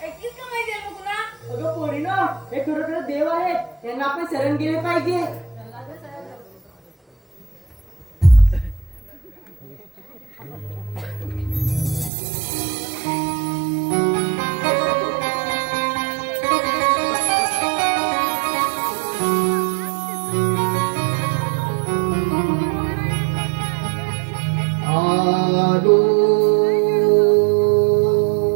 ऐकीस का माहिती आहे मुकुना? अगं पोरीनो, हे खरोखर देव आहेत, त्यांना आपण शरण गेले पाहिजे. आलो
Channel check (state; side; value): drops out; left; at 12.1 s